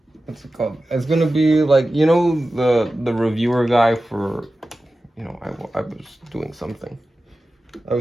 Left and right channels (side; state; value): both; normal; correlation 0.94